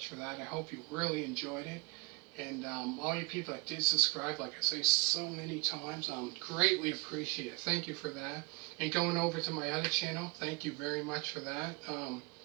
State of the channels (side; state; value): left; quieter; 27.4 dB